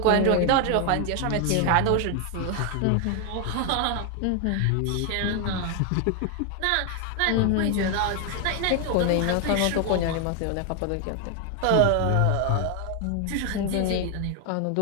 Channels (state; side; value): different; both; correlation 0.01